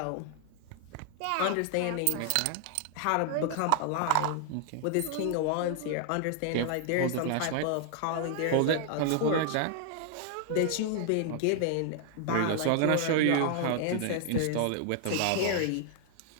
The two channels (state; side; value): different; both; correlation 0.00